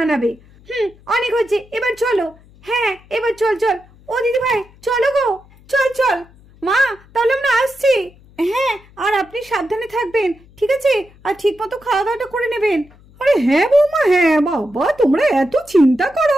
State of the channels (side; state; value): left; noise; hum, 26 dB below the sound